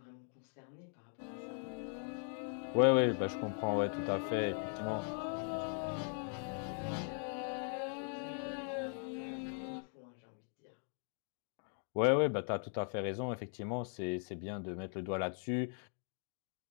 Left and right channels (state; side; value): silent; right; 51 dB below the other